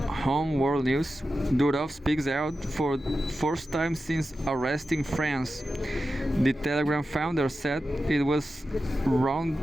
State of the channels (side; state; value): both; normal; correlation 0.92